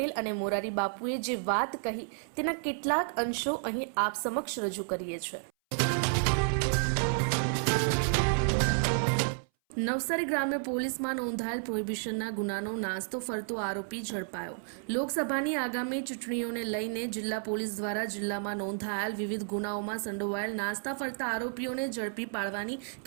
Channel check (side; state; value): left; silent; 57 dB below the other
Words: અને મોરારી બાપુએ જે વાત કહી તેના કેટલાક અંશો અહીં આપ સમક્ષ રજૂ કરીએ છીએ. નવસારી ગ્રામ્ય પોલીસમાં નોંધાયેલ પ્રોહિબિશનના ગુનાનો નાસ્તો ફરતો આરોપી ઝડપાયો. લોકસભાની આગામી ચૂંટણીઓને લઈને જિલ્લા પોલીસ દ્વારા જિલ્લામાં નોંધાયેલ વિવિધ ગુનાઓમાં સંડોવાયેલ નાસ્તા ફરતા આરોપીઓને ઝડપી પાડવાની